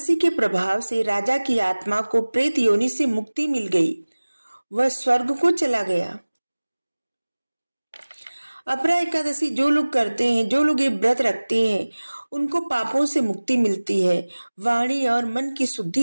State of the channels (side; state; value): both; inverted; correlation -1.00